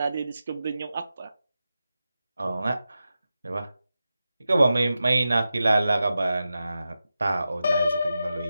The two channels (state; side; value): inverted; both; correlation -0.92